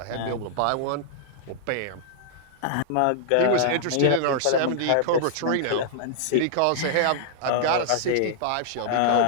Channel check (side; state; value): both; different; correlation -0.01